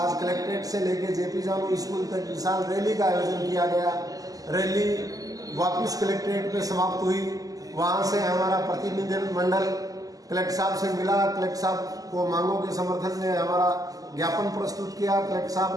कलेक्ट्रेट से लेकर जेपी जानू स्कूल तक विशाल रैली का आयोजन किया गया। रैली वापस कलेक्ट्रेट पे समाप्त हुई। वहाँ से हमारा प्रतिनिधिमंडल कलेक्टर साहब से मिला। कलेक्टर साहब को मांगों के समर्थन में हमारा ज्ञापन प्रस्तुत किया। कलेक्टर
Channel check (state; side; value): late; left; 0.17 ms